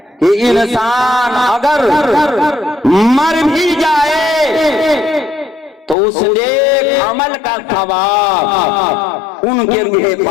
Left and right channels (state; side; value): drops out; right; at 6.0 s